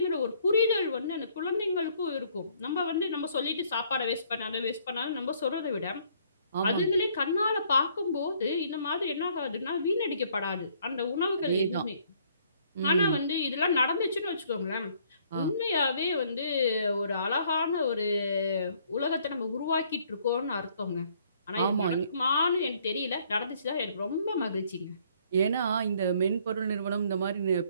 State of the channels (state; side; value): inverted; both; correlation -0.64